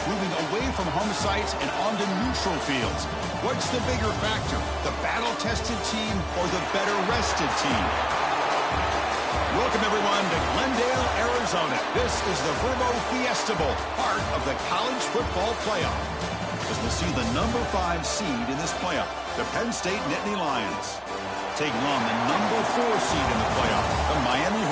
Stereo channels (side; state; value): both; identical; correlation 1.00